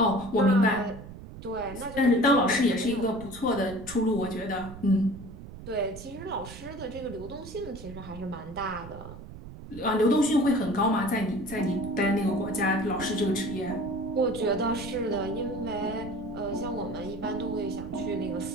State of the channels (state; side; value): noise; right; rumble, 14 dB below the sound